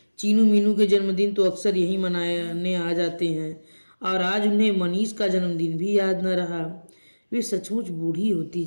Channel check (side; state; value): both; inverted; correlation -1.00